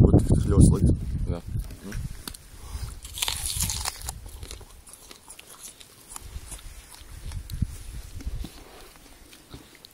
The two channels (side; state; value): both; identical; correlation 1.00